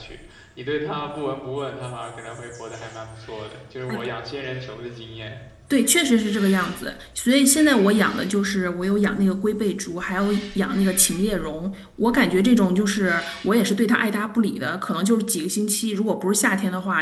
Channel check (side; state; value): both; identical; correlation 1.00